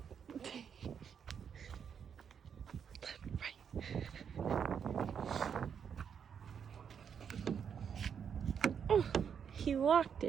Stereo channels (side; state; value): left; quieter; 7.4 dB